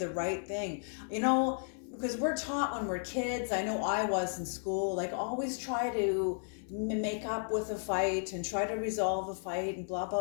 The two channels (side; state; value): right; silent; 55 dB below the other